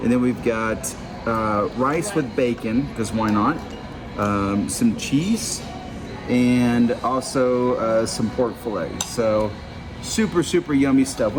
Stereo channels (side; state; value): both; identical; correlation 1.00